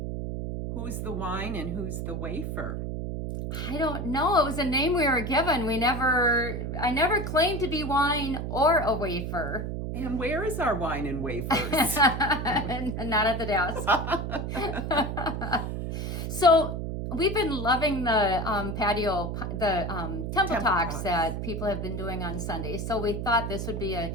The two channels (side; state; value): right; noise; hum, 4 dB below the sound